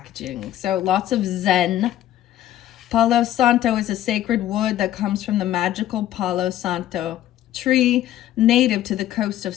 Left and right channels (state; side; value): quieter; right; 12.8 dB